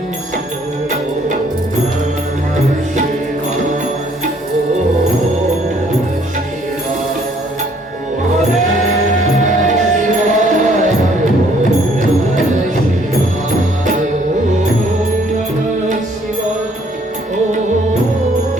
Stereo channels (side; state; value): both; normal; correlation 0.63